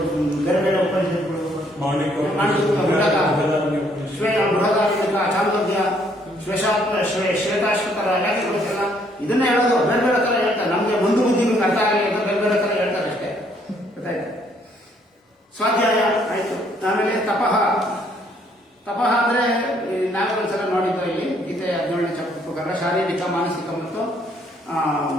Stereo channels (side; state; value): both; normal; correlation 0.67